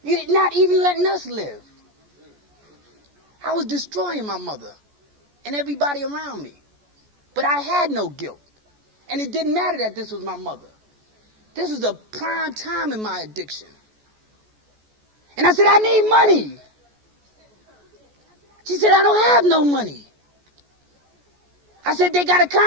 You're not even letting us live. I was destroying my mother and everybody around me. But I had no guilt. And it didn't matter that this was my mother. This was a prime time in my addiction. And I said, I need money. She said, I don't have no money. I said, they got a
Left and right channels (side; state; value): left; late; 14 ms